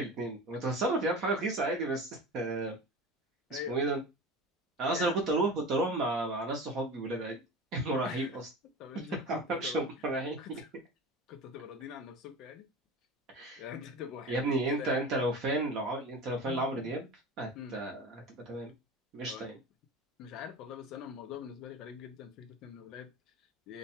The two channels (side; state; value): both; normal; correlation 0.32